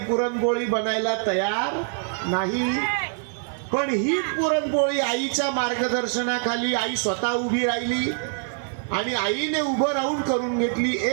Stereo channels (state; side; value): silent; left; digital silence